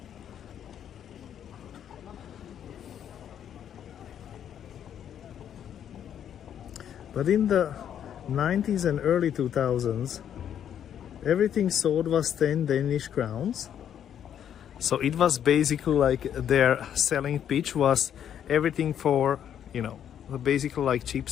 But in the 90s and early 2000s, everything sold was 10 Danish crowns. So it was basically like their selling pitch was everything for, basically like cheap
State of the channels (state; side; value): quieter; right; 9.4 dB